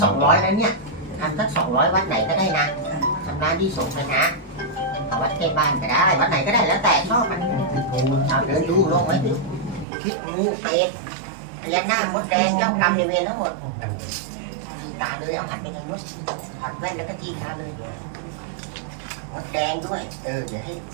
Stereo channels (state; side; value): drops out; left; at 9.9 s